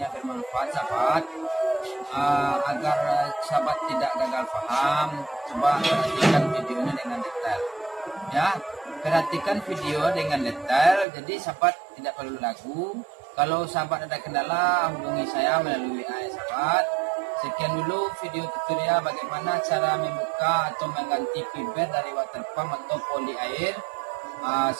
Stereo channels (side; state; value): left; drops out; at 11.1 s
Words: bermanfaat sahabat. Agar sahabat tidak gagal paham, coba perhatikan videonya dengan detail ya. Perhatikan video dengan detail, jadi sahabat tidak perlu ragu. Kalau sahabat ada kendala, hubungi saya melalui WA ya sahabat. Sekian dulu video tutorial bagaimana cara membuka atau mengganti fiber dari water pump atau poli air.